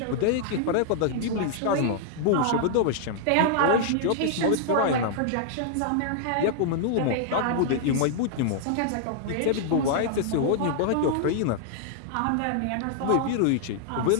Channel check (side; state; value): both; different; correlation -0.01